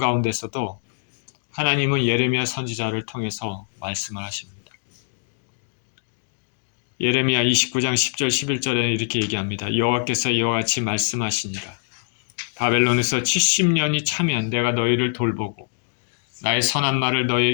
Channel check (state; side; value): silent; right; digital silence